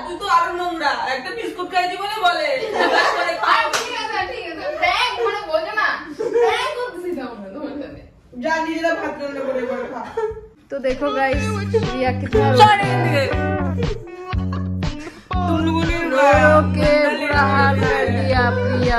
তুই তো আরো নোংরা, একটা বিস্কুট খাইছি বলে বলে যা নিজেরা ভাত রান্না করে করে খা। तो देखो गाइस प्रिया कितना रो के बुरा हाल कर दिया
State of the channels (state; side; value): identical; both; correlation 1.00